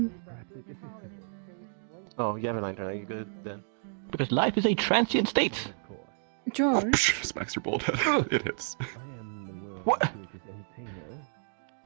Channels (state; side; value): silent; left; digital silence